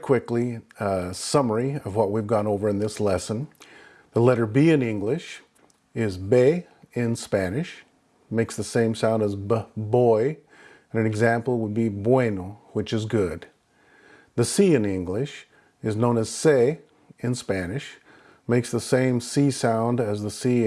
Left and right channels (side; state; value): both; identical; correlation 1.00